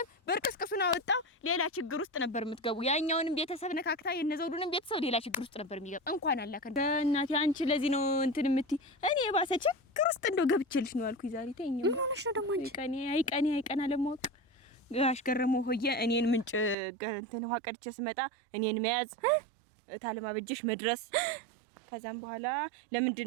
በርቅስቅሱን አወጣው ሌላ ችግር ውስጥ ነበር የምትገቡ። ያኛውንም ቤተሰብ ነካክታ የነዘውዱንም ቤተሰብ ሌላ ችግር ውስጥ ነበር የሚገባ። እንኳን አላከ እናቴ አንቺ ለዚህ ነው እንትን የምትይ። እኔ የባሰ ችግር ውስጥ እንደው ገብቼልሽ ነው አልኩኝ ዛሬ። ተይኝ ምን ሆነሽ ነው ደግሞ አንቺ? አይቀኔ ለማወቅ ጋሽ ገረመው ሆየ እኔን ምንጭ እንትን ውሃ ቀድቼ ስመጣ እኔን መያዝ እታለም አበጀሽ መድረስ ከዛም በኋላ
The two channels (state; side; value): drops out; left; at 16.8 s